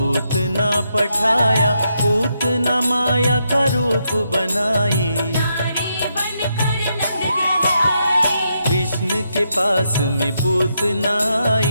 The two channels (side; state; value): both; inverted; correlation -0.81